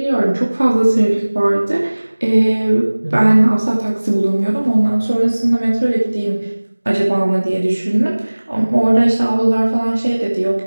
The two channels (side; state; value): both; inverted; correlation -1.00